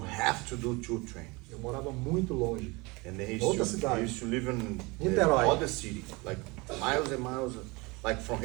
have to do 2 trains. Eu morava muito longe. And then he Outra used cidade. to live in Niterói. other city, like miles and miles, like from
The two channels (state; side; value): quieter; left; 25.4 dB